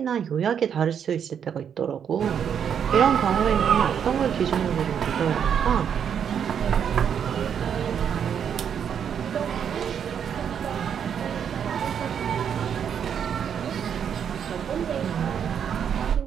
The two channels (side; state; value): left; quieter; 8.1 dB